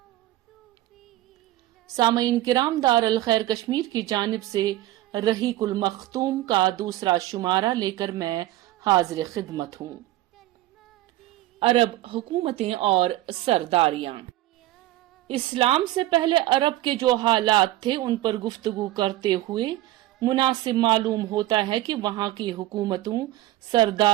سامعین کرام، دار الخیر کشمیر کی جانب سے رحیق المختوم کا دوسرا شمارہ لے کر میں حاضر خدمت ہوں۔ عرب حکومتیں اور سرداریاں۔ اسلام سے پہلے عرب کے جو حالات تھے ان پر گفتگو کرتے ہوئے مناسب معلوم ہوتا ہے کہ وہاں کی حکومتوں،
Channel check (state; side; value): quieter; left; 15.6 dB